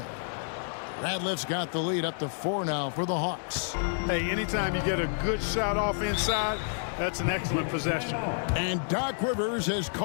Ratliff's got the lead up to 4 now for the Hawks. Hey, anytime you get a good shot off inside, that's an excellent possession. And Doc Rivers has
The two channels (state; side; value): silent; right; digital silence